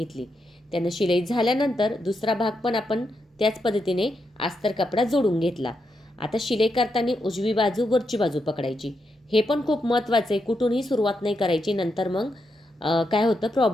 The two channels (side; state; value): both; normal; correlation 0.83